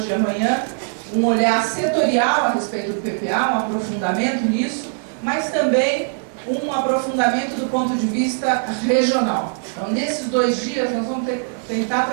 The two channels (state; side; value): silent; left; digital silence